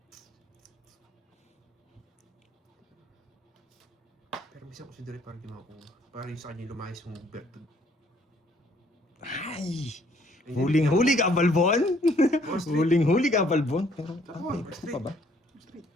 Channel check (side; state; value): both; normal; correlation 0.63